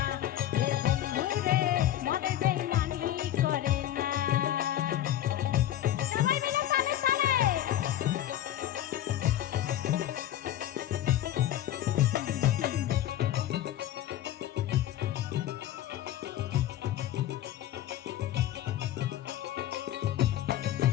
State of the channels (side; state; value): right; quieter; 12.5 dB